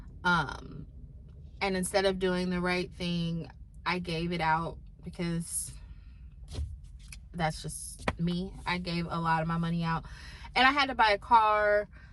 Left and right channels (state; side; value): identical; both; correlation 1.00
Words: and instead of doing the right thing, I gave it out because that's just me. I gave a lot of my money out, and I had to buy a car.